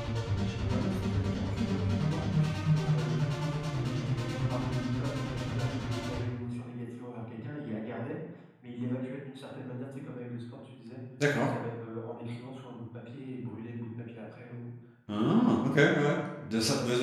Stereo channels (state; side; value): identical; both; correlation 1.00